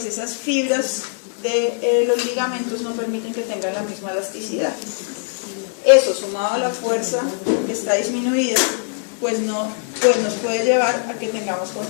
esas fibras de los ligamentos no permiten que tengan la misma elasticidad. Eso, sumado a la fuerza que está disminuida, pues nos puede llevar a que tengamos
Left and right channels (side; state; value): right; silent; 61 dB below the other